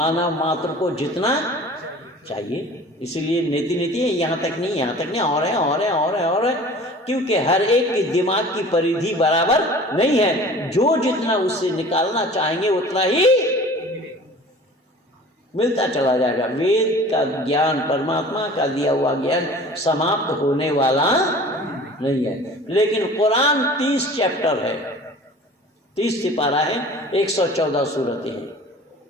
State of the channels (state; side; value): normal; both; correlation 0.43